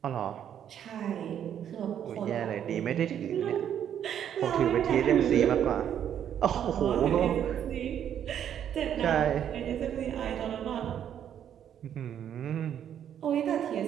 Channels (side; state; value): left; quieter; 9.5 dB